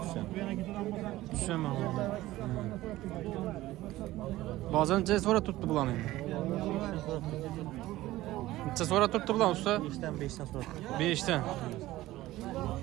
düşen. Düşemem. Bazen neçə sonra tuttu bulan indi. Neçə sonra tuttu bulan usta? 5'ten sonra. 5'ten.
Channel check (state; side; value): quieter; left; 16.5 dB